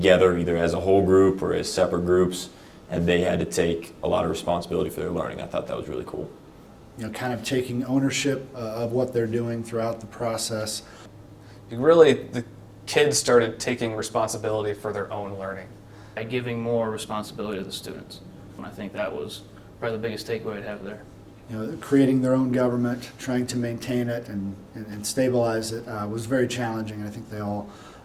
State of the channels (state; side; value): identical; both; correlation 1.00